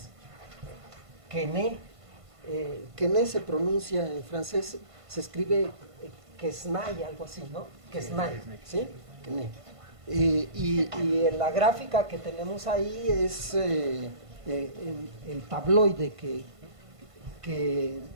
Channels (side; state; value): left; late; 1.5 ms